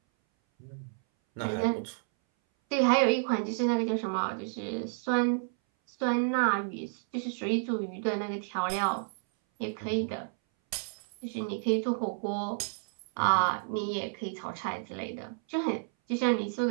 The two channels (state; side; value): silent; left; 57 dB below the other